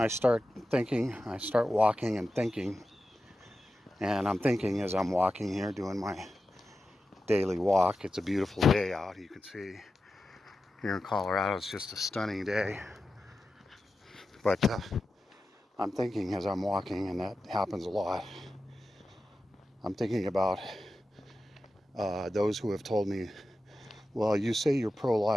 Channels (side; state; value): both; normal; correlation 0.92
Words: start thinking, I start walking and thinking, and I'm thinking as I'm walking here, doing my daily walk. It's a beautiful day out. You can see here in Colorado, it's just a stunning day. But I'm thinking as I'm walking, and that happens a lot. I'm thinking about those who have told me, well, you say you're